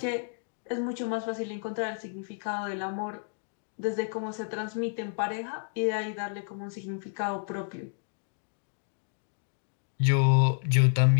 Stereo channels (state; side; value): silent; right; digital silence